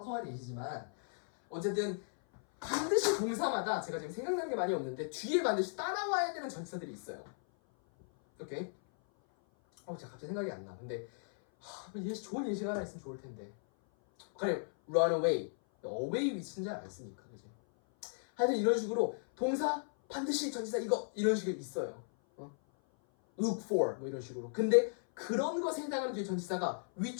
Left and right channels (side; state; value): right; silent; 54 dB below the other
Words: 예시지만 어쨌든 반드시 동사마다 제가 지금 생각나는 게 많이 없는데 뒤에 반드시 따라와야 되는 전치사들이 있어요. 오케이? 제가 갑자기 생각이 안 나. 근데 좋은 예시가 하나 있으면 좋을 텐데. 그래, run away. away 위치는 잘 안 쓰니까, 그지? 하여튼 이런 식으로 동사 반드시 전치사 이거 이런 식으로 있어요. look for 뭐 이런 식으로. 근데 그런 것에 해당하는 뒤에 전치사가